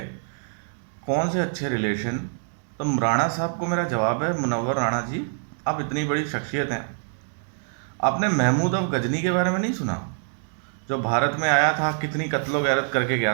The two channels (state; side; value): silent; left; digital silence